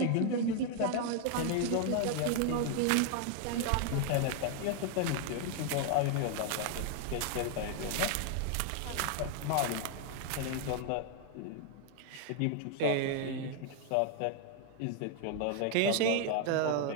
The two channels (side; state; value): both; different; correlation 0.00